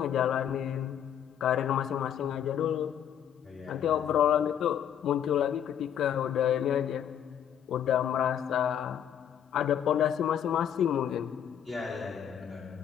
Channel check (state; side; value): quieter; right; 9.3 dB